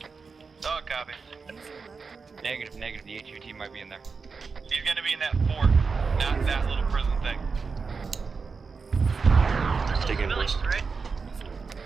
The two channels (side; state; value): left; quieter; 4.9 dB